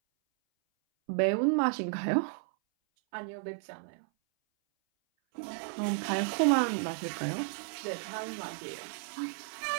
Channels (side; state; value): left; silent; 56 dB below the other